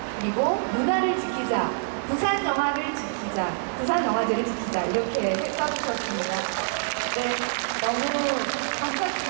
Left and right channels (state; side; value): silent; left; 61 dB below the other